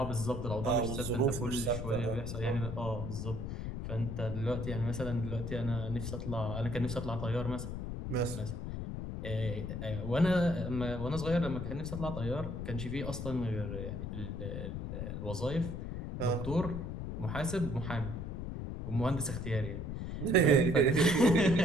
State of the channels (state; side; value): noise; left; rumble, 5 dB below the sound